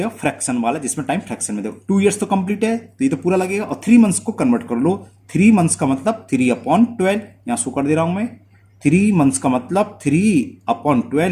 फ्रैक्शन वाला, जिसमें टाइम फ्रैक्शन में। देखो 2 years तो कंप्लीट है तो ये तो पूरा लगेगा, और 3 months को कन्वर्ट कर लो। 3 months का मतलब 3/12, यहां शो कर दे रहा हूं मैं। 3 months का मतलब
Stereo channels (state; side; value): identical; both; correlation 1.00